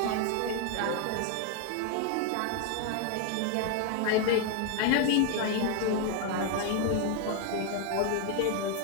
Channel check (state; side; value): different; both; correlation 0.01